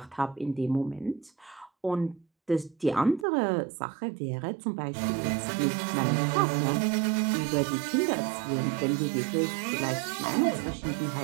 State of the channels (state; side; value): drops out; left; at 3.2 s